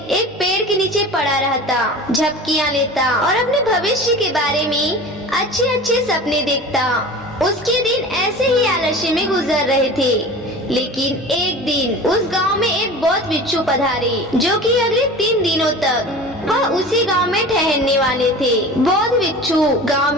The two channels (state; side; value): normal; both; correlation 0.36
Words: एक पेड़ के नीचे पड़ा रहता, झपकियां लेता और अपने भविष्य के बारे में अच्छे अच्छे सपने देखता। उसके दिन ऐसे ही आलस्य में गुजर रहे थे। लेकिन एक दिन उस गांव में एक बौद्ध भिक्षु पधारे, जो कि अगले 3 दिनों तक वह उसी गांव में ठहरने वाले थे। बौद्ध भिक्षु गांव